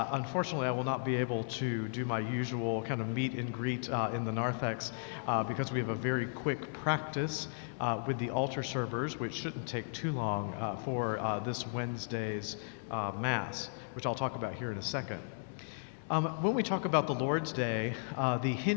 I will not be able to do my usual kind of meet and greet in the narthex because we have a very quick practice with the altar servers, which shouldn't take too long for this Wednesday's Mass, which I'll talk about here in a second. When we talk about the Lord's Day, the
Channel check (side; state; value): right; silent; digital silence